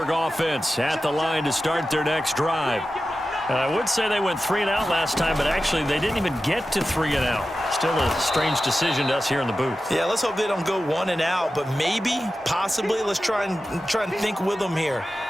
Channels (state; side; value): normal; both; correlation 0.93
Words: offense at the line to start their next drive. I would say they went 3 and out last time, but actually they didn't even get to 3 and out. Still a strange decision to us here in the booth. Yeah, let's hope they don't go 1 and out, but maybe, possibly, let's try and think with them here.